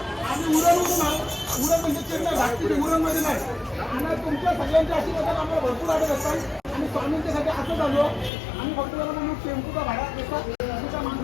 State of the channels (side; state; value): right; drops out; at 8.3 s